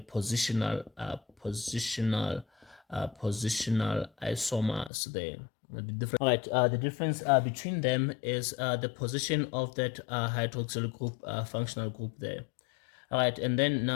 positional isomers there. All right, the difference between them is the position of that hydroxyl group, functional group there. All right, and then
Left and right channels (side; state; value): right; drops out; at 4.9 s